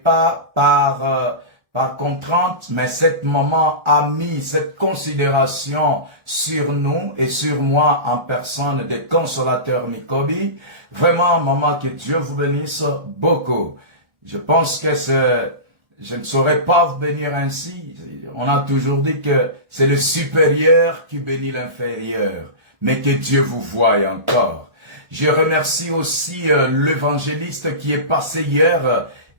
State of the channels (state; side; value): late; left; 1.3 ms